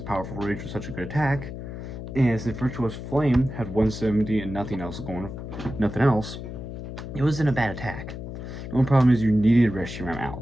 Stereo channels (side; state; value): left; noise; hum, 9 dB below the sound